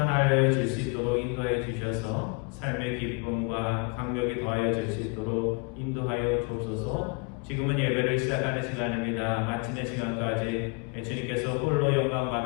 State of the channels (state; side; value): quieter; right; 32.4 dB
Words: 질 수 있도록 인도해 주셔서 삶의 기쁨과 강력이 더하여 질 수 있도록 인도하여 주옵소서. 지금은 예배를 시작하는 시간입니다. 마치는 시간까지 주님께서 홀로 영광